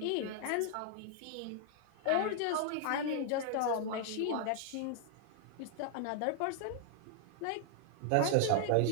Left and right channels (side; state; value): both; different; correlation 0.00